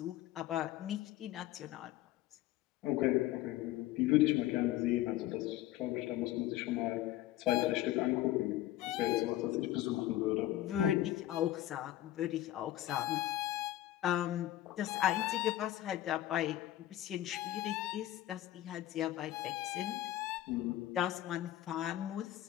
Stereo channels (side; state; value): right; quieter; 14.3 dB